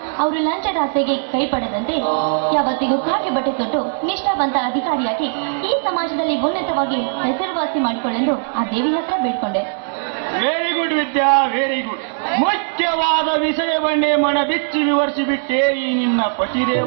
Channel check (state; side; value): silent; left; digital silence